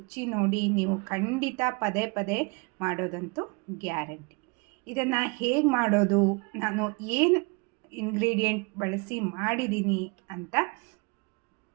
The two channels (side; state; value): left; quieter; 29.8 dB